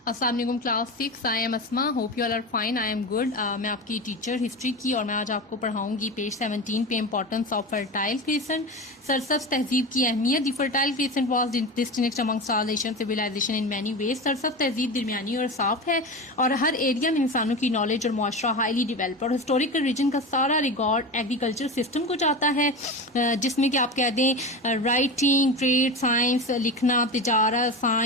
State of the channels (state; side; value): normal; both; correlation 0.25